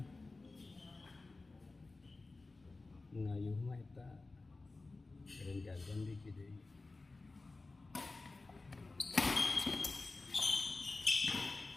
Ngayu mah eta Grand Jam-jam di hiji deui.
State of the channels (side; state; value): right; quieter; 3.5 dB